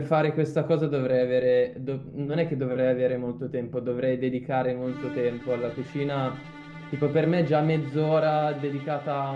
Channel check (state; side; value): identical; both; correlation 1.00